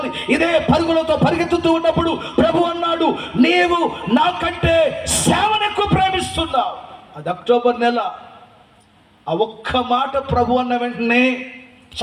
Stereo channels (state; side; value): identical; both; correlation 1.00